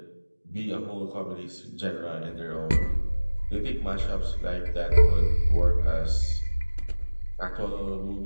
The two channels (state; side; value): inverted; both; correlation -1.00